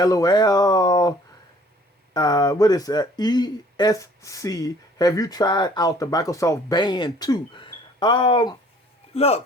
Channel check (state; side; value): normal; both; correlation 0.55